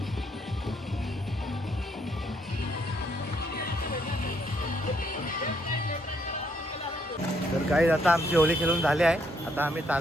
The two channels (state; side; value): normal; both; correlation 0.72